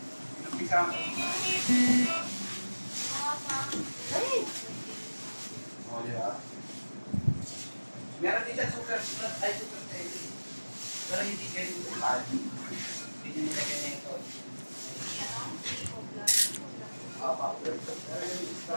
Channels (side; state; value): both; inverted; correlation -1.00